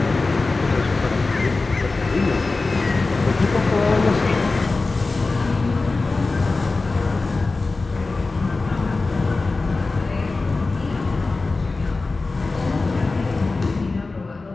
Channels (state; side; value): quieter; right; 3.6 dB